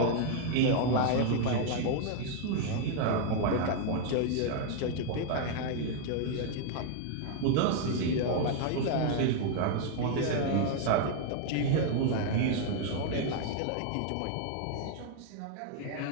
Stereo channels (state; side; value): different; both; correlation 0.00